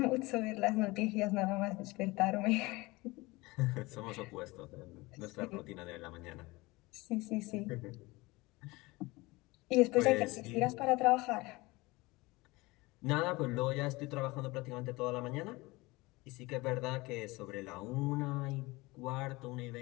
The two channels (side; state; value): right; quieter; 22.4 dB